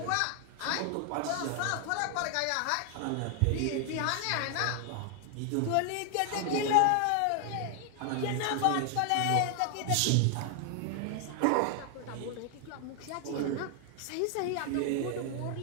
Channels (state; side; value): different; both; correlation 0.00